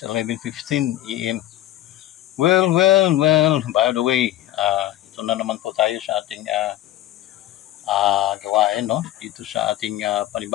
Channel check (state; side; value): quieter; right; 14.1 dB